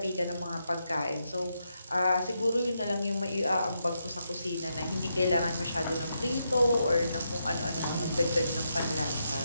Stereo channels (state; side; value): inverted; both; correlation -0.82